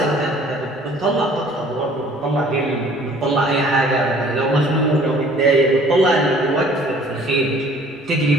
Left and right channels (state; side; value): normal; both; correlation 0.54